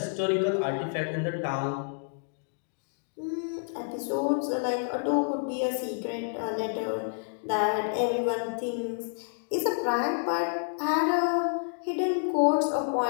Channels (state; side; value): silent; right; digital silence